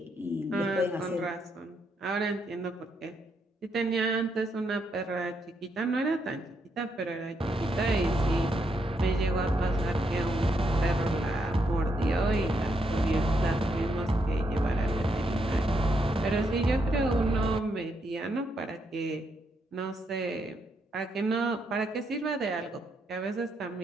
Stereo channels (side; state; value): both; normal; correlation 0.78